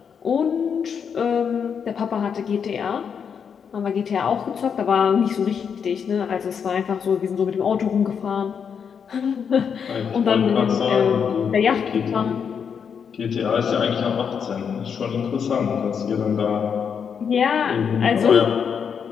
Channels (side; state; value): right; quieter; 7.0 dB